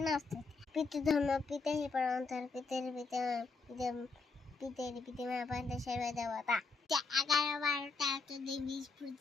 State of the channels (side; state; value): right; quieter; 4.2 dB